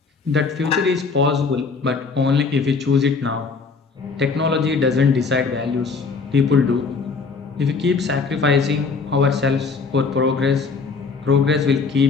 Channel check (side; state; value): right; quieter; 4.7 dB